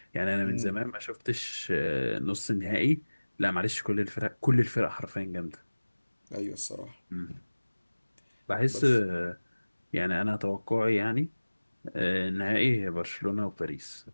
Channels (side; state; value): both; inverted; correlation -1.00